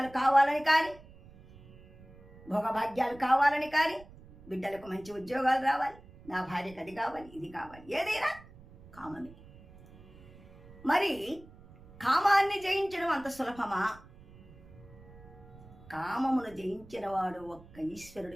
కావాలని కానీ, భోగభాగ్యాలు కావాలని కానీ, బిడ్డలకు మంచి ఉద్యోగాలు రావాలి, నా భార్యకు అది కావాలి, ఇది కావాలి, ఏదైనా కామమే. మరి కామాన్ని జయించడం అంత సులభమా? కామమును జయించిన వాడు ఒక్క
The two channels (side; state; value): right; noise; rumble, 21 dB below the sound